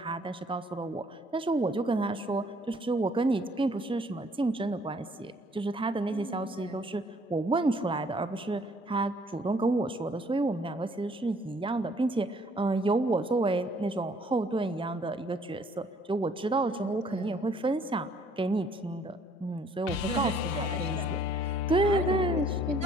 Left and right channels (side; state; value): both; normal; correlation 0.61